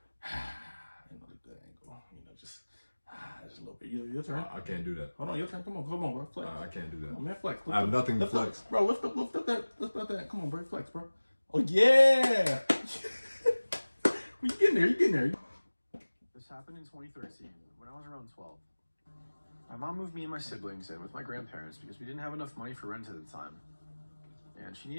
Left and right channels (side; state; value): both; inverted; correlation -1.00